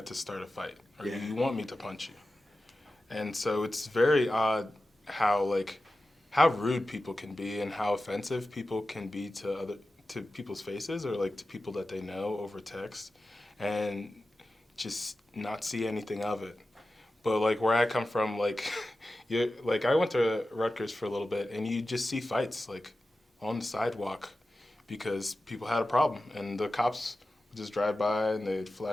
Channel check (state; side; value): normal; both; correlation 0.94